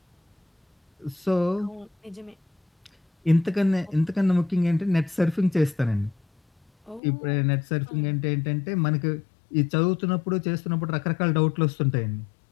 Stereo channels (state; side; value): drops out; right; at 7.0 s